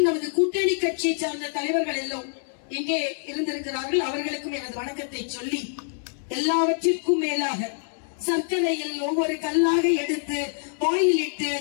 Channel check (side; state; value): right; silent; 60 dB below the other